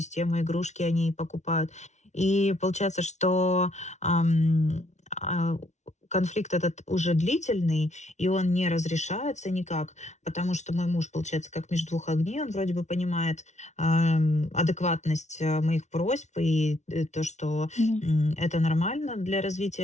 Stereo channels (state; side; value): late; right; 0.33 ms